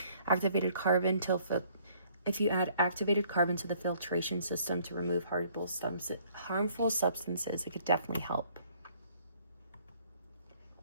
Activated carbon if you add activated carbon to the filtration system to remove harmful substances, it could definitely help.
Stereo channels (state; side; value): inverted; both; correlation -0.60